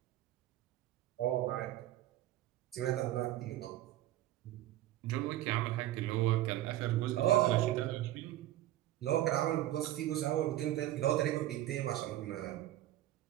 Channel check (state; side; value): quieter; left; 14.3 dB